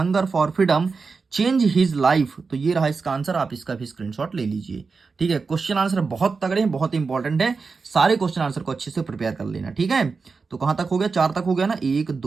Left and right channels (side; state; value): left; quieter; 4.7 dB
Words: for freedom change his life, तो ये रहा इसका आंसर, आप इसका भी स्क्रीनशॉट ले लीजिए, ठीक है। क्वेश्चन आंसर बहुत तगड़े हैं, बहुत इंपॉर्टेंट है, सारे क्वेश्चन आंसर को अच्छे से प्रिपेयर कर लेना, ठीक है। तो कहां तक हो गया, 4 तक हो गया ना, 1